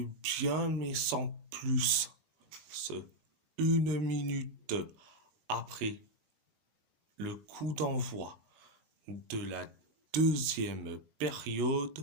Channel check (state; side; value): late; left; 20 ms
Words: bien, mais sans plus. Une minute après le coup d'envoi de la deuxième